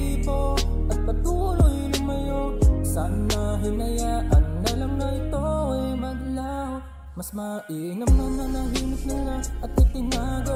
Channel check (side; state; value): both; identical; correlation 1.00